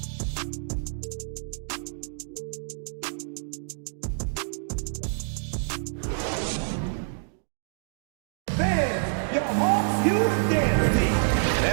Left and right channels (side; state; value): left; silent; digital silence